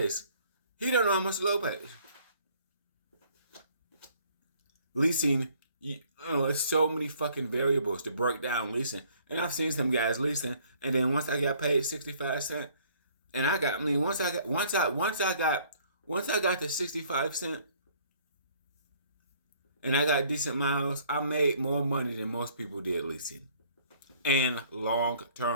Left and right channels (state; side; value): inverted; both; correlation -0.59